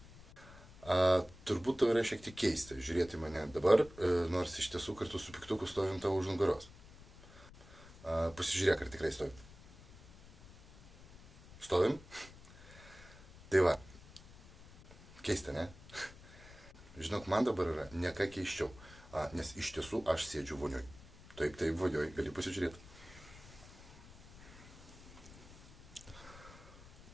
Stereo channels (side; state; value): left; noise; rumble, 20 dB below the sound